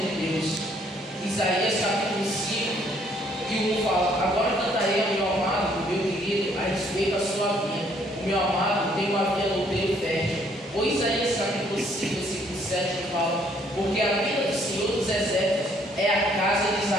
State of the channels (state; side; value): normal; both; correlation 0.65